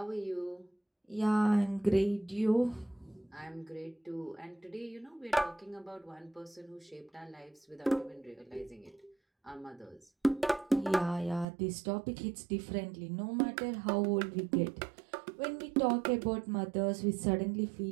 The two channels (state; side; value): drops out; left; at 11.5 s